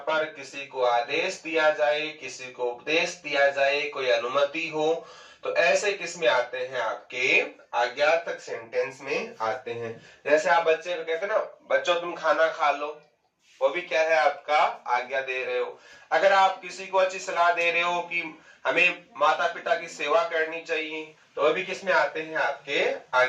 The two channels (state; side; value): identical; both; correlation 1.00